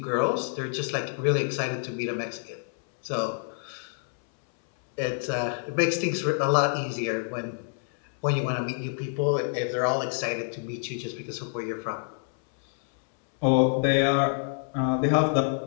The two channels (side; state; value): right; silent; 60 dB below the other